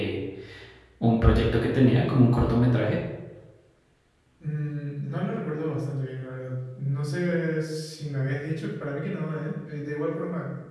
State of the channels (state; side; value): identical; both; correlation 1.00